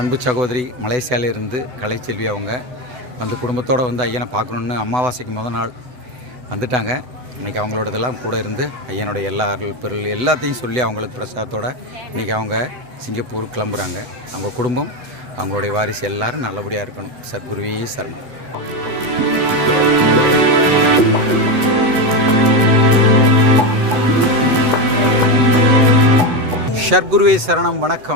சகோதரி மலேசியாவிலிருந்து கலைச்செல்வி அவங்க வந்து குடும்பத்தோடு வந்து ஐயனை பார்க்கணுன்னு அமாவாசைக்கு முதல் நாள் வந்துட்டாங்க. இன்றைக்கி அவங்களோட இதெல்லாம் கூட இருந்து ஐயனுடைய எல்லா அருள் பொருள் எல்லாத்தையும் சொல்லி அவங்களுக்கு பிரசாதத்தோடு இன்றைக்கி அவங்க சிங்கப்பூர் கிளம்புறாங்க. அவங்க குடும்பம் அவங்களுடைய வாரிசு எல்லோரும் நல்லபடியாக இருக்கணும். சத்குருவே சரணம். ஷர்குருவே சரணம்.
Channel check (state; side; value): late; left; 8.0 ms